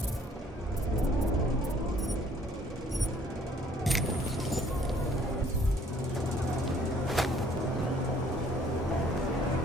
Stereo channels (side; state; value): both; normal; correlation 0.59